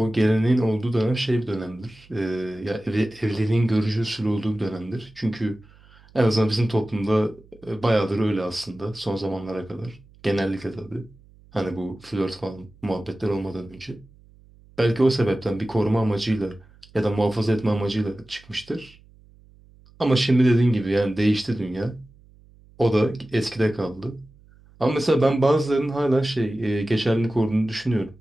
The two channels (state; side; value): noise; right; hum, 26 dB below the sound